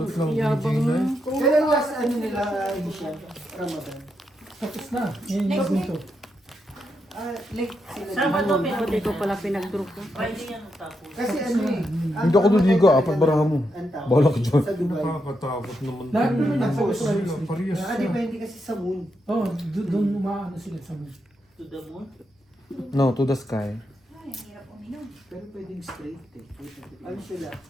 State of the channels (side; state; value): both; normal; correlation 0.83